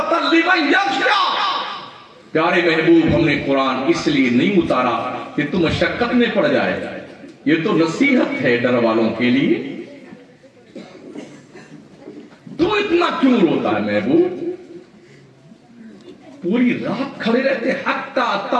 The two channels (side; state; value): both; identical; correlation 1.00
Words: लिमन यख़्शा। प्यारे महबूब, हमने कुरान इसलिए नहीं उतारा कि तुम मशक्कत में पड़ जाए, ये तो नसीहत है डर वालों के लिए। तो इतना क्यों रोता है महबूब? पूरी रात खड़े रहते, हत्ता